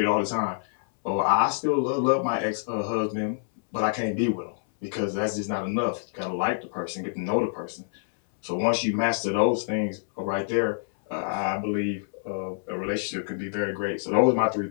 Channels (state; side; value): silent; right; 60 dB below the other